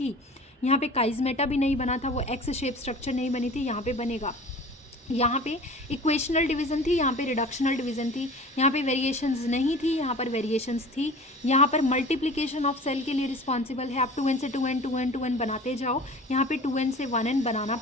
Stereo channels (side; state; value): both; normal; correlation 0.41